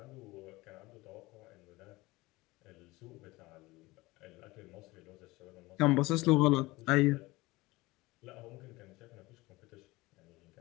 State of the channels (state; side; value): quieter; right; 21.0 dB